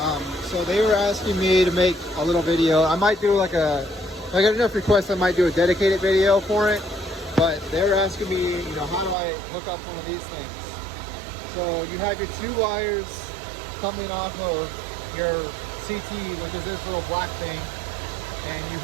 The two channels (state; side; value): drops out; left; at 9.2 s